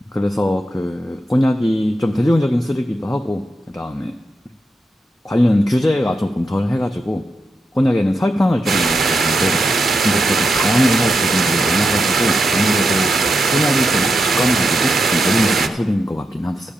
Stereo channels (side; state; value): both; normal; correlation 0.86